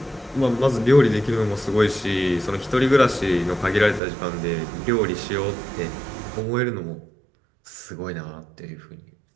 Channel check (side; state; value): left; drops out; at 4.0 s